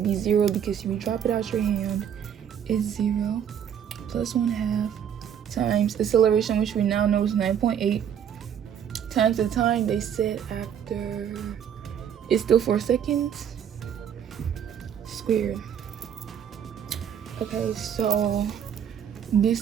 0 because if you drop it out your hand, it's 0 plus 1/2 times acceleration, which we now know is 9.8, times the time they said after, it's still 4 seconds, squared. Okay, so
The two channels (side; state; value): left; quieter; 8.8 dB